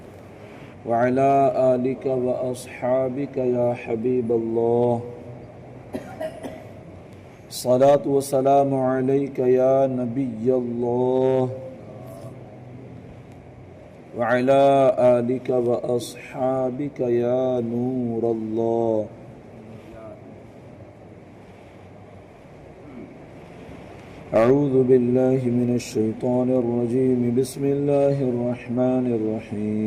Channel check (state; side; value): identical; both; correlation 1.00